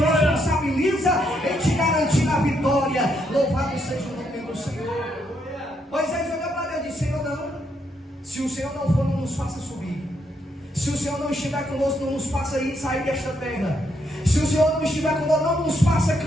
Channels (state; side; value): normal; both; correlation 0.76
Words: em te garantir a vitória. Louvado seja o nome do Senhor. Moisés olhou para Deus e disse: Senhor, não, se o Senhor não for, não nos faça subir. Se o Senhor não estiver conosco, não nos faça sair desta terra. Se o Senhor não estiver conosco, não nos faça